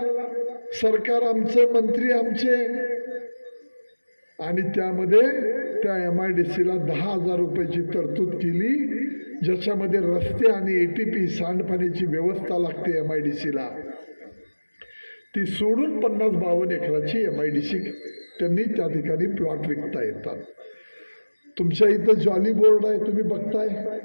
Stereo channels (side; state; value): both; inverted; correlation -1.00